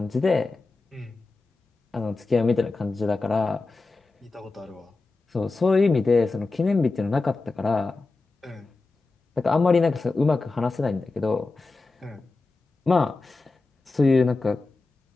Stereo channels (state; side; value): quieter; right; 3.6 dB